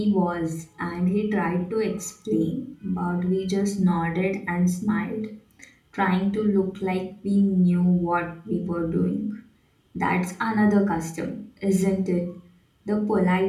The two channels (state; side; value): identical; both; correlation 1.00